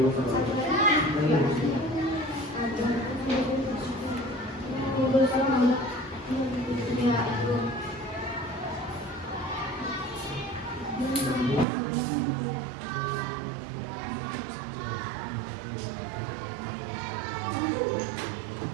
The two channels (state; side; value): drops out; left; at 11.7 s